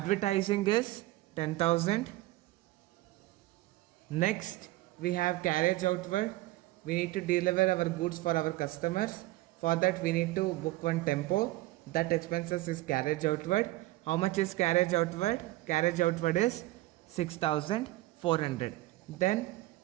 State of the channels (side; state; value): left; quieter; 18.2 dB